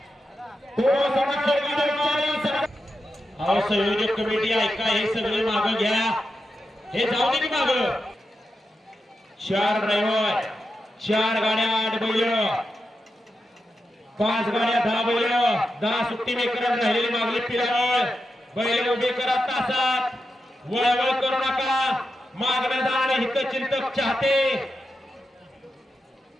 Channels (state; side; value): normal; both; correlation 0.89